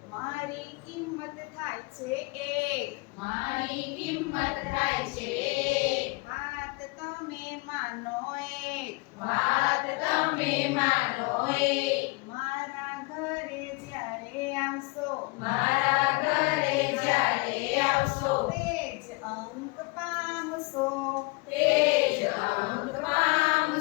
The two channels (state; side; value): quieter; right; 26.7 dB